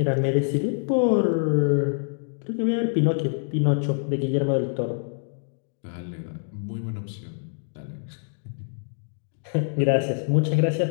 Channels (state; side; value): silent; right; digital silence